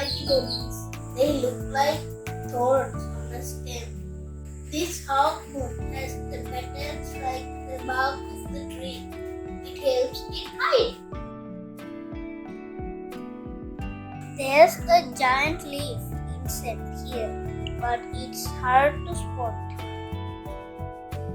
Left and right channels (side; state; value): both; identical; correlation 1.00